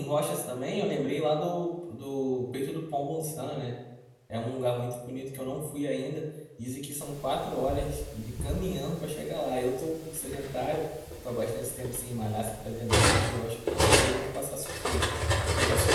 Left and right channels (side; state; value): both; identical; correlation 1.00